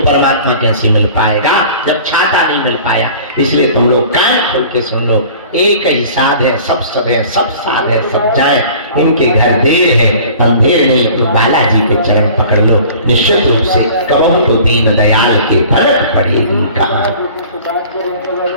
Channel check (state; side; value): inverted; both; correlation -0.46